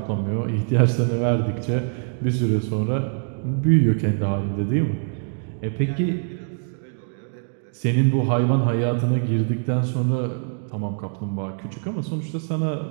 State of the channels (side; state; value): left; silent; digital silence